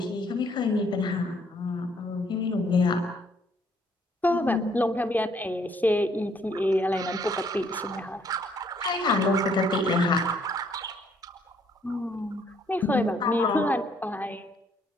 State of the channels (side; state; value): both; normal; correlation 0.66